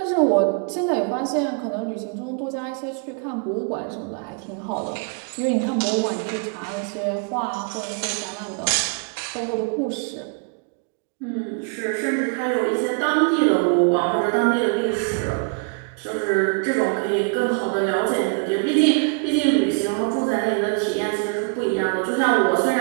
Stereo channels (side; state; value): left; quieter; 37.5 dB